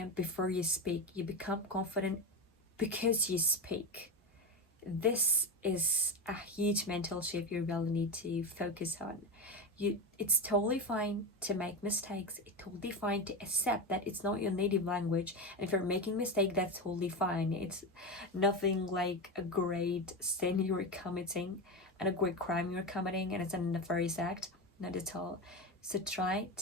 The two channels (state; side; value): normal; both; correlation 0.17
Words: before you speak. You become confident because you speak. This is a huge mental shift you really need to focus on. It's totally fine to make mistakes. It's totally fine to accept that it's not your native language. And if you're making a mistake, that's totally fine. It's nothing like a great sin you're committing and a great crime you're committing, and it's a nefarious act. Not at all. So try